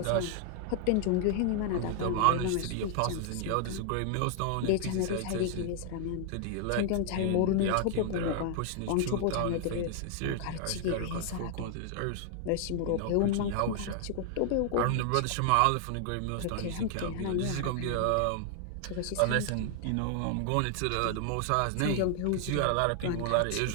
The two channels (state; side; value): different; both; correlation 0.00